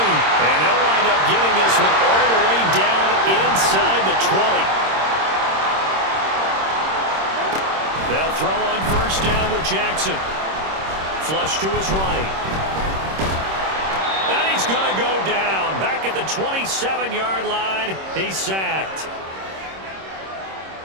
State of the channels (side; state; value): left; late; 26 ms